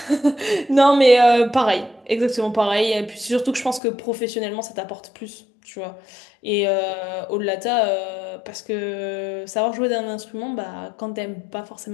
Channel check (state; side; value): drops out; right; at 3.8 s